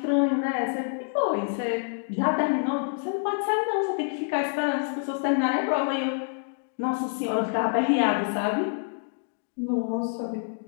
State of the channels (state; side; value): silent; right; digital silence